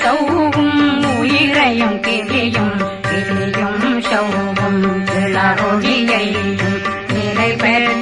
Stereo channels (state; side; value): identical; both; correlation 1.00